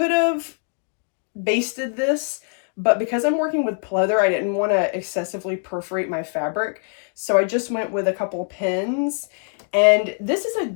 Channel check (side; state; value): right; silent; 56 dB below the other